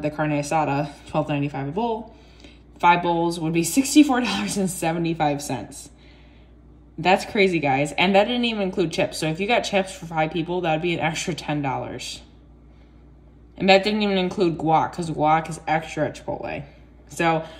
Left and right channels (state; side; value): identical; both; correlation 1.00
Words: carne asada, $12.95 a bowl, 5 bowls would be $64.75. That's crazy, guys. And that didn't even include chips. So if you got chips for 5 people, that'd be an extra $10. And that didn't even include guac, because guac is extra at Chipotle. So